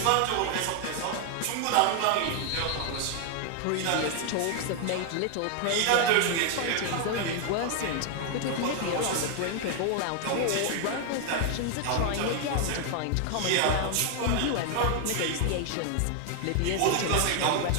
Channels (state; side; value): different; both; correlation 0.00